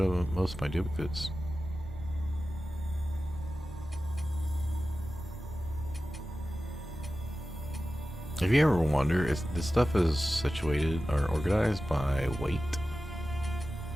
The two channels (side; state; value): both; normal; correlation 0.95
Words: most of my duplicates. If you ever wonder, if this stuff is situated or organized by weight.